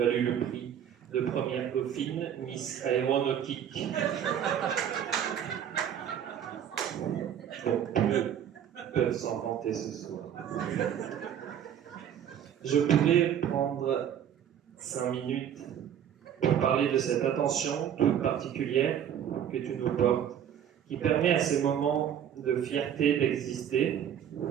le prix de première dauphine, Miss Aéronautique. Bon, peu peuvent s'en vanter ce soir. Je pourrais prendre 5 minutes pour parler de cette attention toute particulière que tu nous portes, qui permet à ces moments de fierté d'exister,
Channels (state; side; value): quieter; left; 9.4 dB